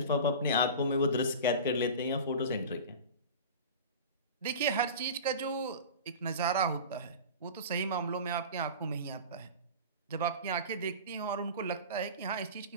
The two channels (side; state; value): both; inverted; correlation -0.32